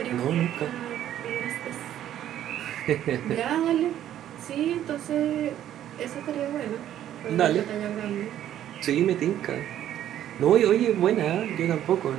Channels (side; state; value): left; quieter; 11.5 dB